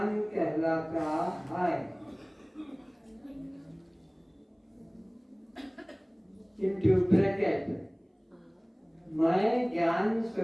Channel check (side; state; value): both; identical; correlation 1.00